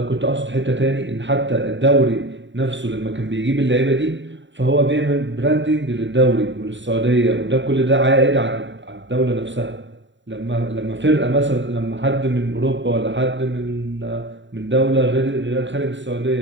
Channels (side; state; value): left; late; 0.54 ms